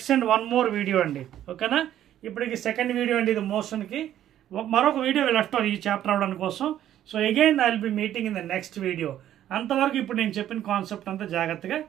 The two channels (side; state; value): left; quieter; 11.7 dB